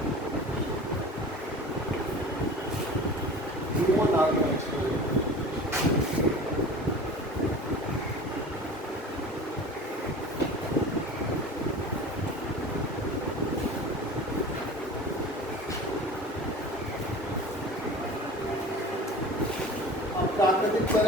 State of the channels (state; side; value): normal; both; correlation 0.39